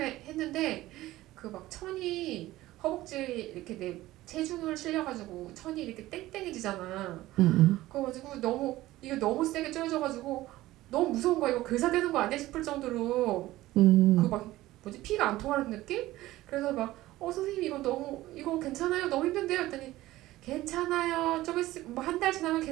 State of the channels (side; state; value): left; quieter; 16.6 dB